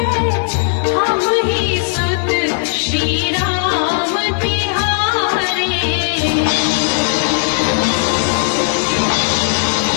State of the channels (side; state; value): right; silent; 61 dB below the other